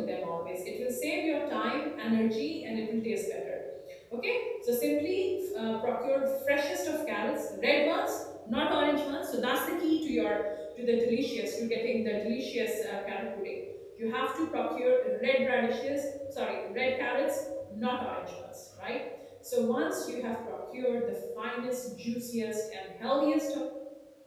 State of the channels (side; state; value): both; identical; correlation 1.00